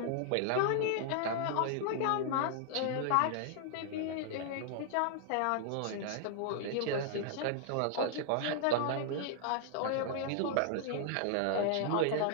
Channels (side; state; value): both; different; correlation 0.00